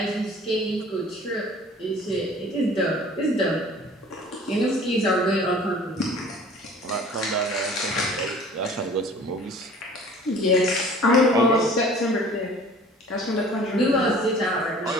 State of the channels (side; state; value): both; normal; correlation 0.48